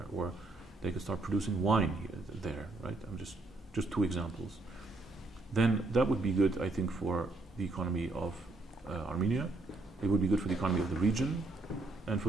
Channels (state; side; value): quieter; left; 3.2 dB